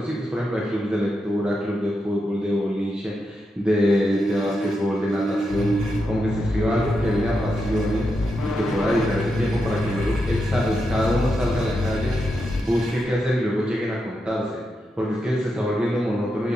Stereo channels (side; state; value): both; normal; correlation 0.85